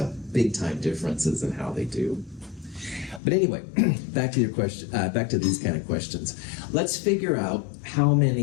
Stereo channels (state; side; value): drops out; right; at 3.2 s